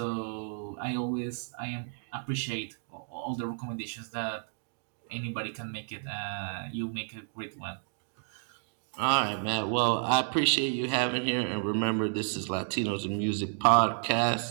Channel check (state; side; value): silent; left; digital silence